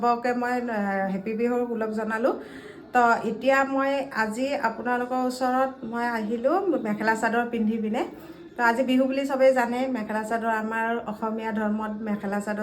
মই হেপী বিহুৰ ওলগ জনালোঁ। তো এতিয়া মই আজি আপোনালোকৰ ওচৰত মই আহিলোঁ মেখেলা চাদৰ পিন্ধি পিনে। তো আজি বিহু বুলি চবেই জানে, মেখেলা চাদৰ আমাৰ অসমীয়া ধৰ্মত মেখেলা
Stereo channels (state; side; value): identical; both; correlation 1.00